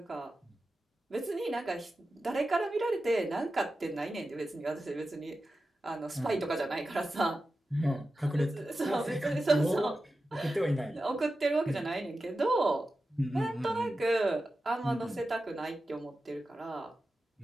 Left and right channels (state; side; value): normal; both; correlation 0.92